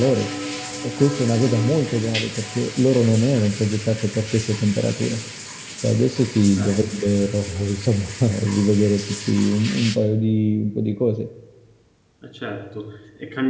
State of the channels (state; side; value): identical; both; correlation 1.00